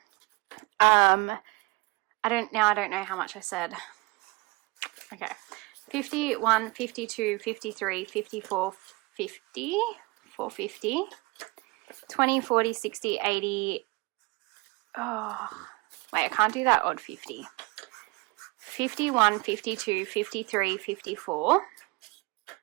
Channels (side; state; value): left; quieter; 25.5 dB